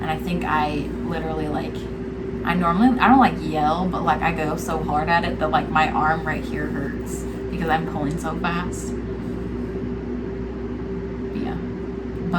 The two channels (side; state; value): both; identical; correlation 1.00